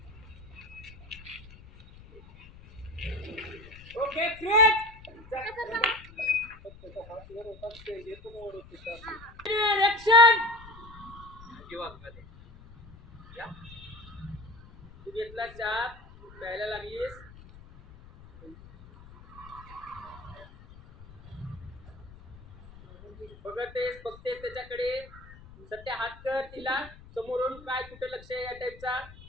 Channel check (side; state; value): left; noise; rumble, 19 dB below the sound